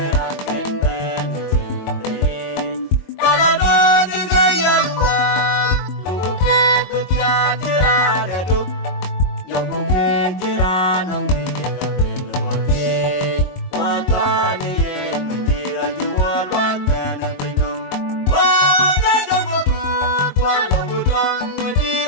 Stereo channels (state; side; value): late; right; 22 ms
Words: a ken ben chi re ka la do ji ga yan wa lu ku ke ku tia chi ra de du yo ku ke chi ra nong bi ye ka be no wa ke wa ka ni ye ni ra ji wa lo ta na pe no wa ga ga ku ku wa lo ku tang ni